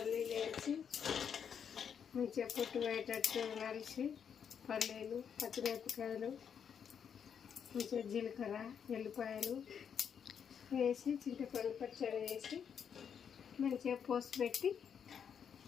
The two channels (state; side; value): quieter; right; 7.6 dB